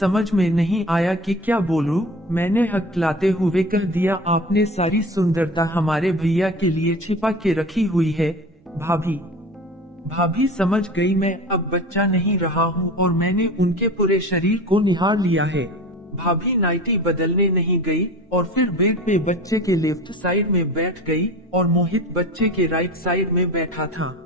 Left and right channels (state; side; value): normal; both; correlation 0.36